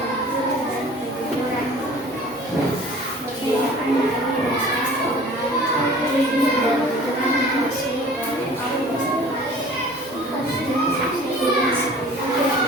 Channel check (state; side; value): normal; both; correlation 0.46